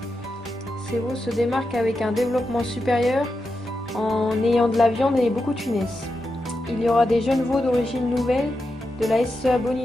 Ces veaux se démarquent avec un développement supérieur en ayant de la viande et beaucoup de finesse. Il y aura des jeunes veaux d'origine nouvelle, de la SEA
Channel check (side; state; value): both; normal; correlation 0.88